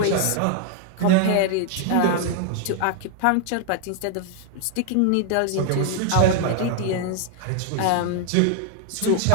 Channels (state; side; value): different; both; correlation 0.00